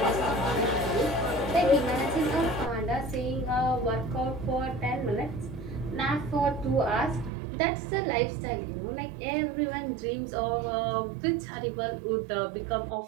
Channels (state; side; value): drops out; left; at 7.3 s